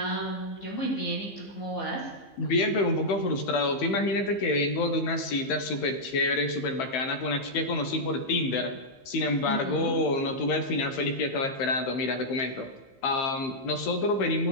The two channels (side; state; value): right; late; 15 ms